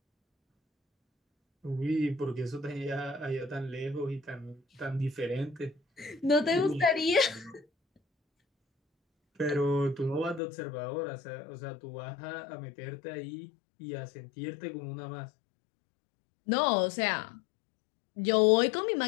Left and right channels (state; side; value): drops out; right; at 10.4 s